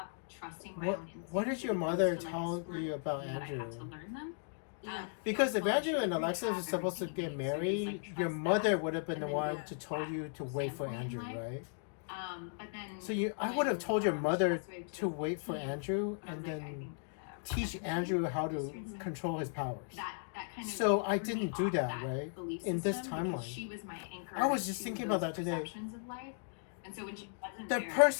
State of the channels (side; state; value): right; silent; digital silence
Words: trusting my What own instincts. What did as your opposed mother to, like, tell screw you about that I have to Andrew? learn them. Yeah. Because if Well, Andrew she and didn't Alexis have were supposed to everything get you need, so just, married, like, your trust mother that, would have been the and then one yeah. to tell you to wait for standpoint in Andrew, life. right? But then So I when, would have told your she mother passed away in to wait for 2015, Andrew I was and like, I then think, teach 17, Andrew how to Mhm. control his powers. that kind of So I threw me didn't do off that, right? belief In this system, timeline. because she was my anchor. I was just to thinking about those that today. perceptions of life. And so when she wasn't The there,